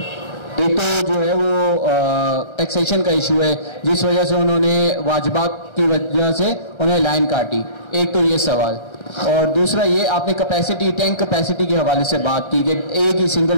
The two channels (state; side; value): late; right; 1.3 ms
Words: एक तो जो है वो टैक्सेशन का इशू है जिस वजह से उन्होंने वाजिबात की वजह से उन्हें लाइन काटी, एक तो ये सवाल। और दूसरा ये आपने कैपेसिटी, टैंक कैपेसिटी के हवाले से बात की कि एक ही